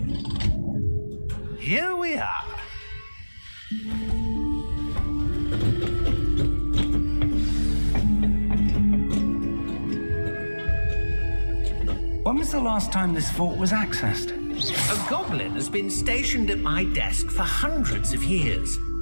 Here we are. When was the last time this vault was accessed? A goblin has been stationed at my desk for hundreds of years.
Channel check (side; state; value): both; inverted; correlation -1.00